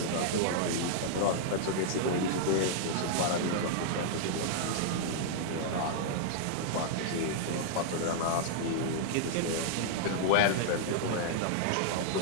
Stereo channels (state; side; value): different; both; correlation -0.01